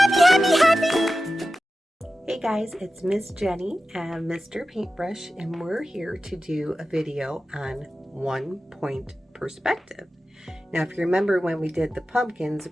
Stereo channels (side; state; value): both; normal; correlation 0.94